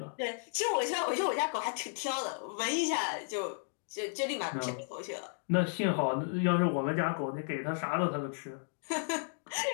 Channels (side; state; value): right; silent; digital silence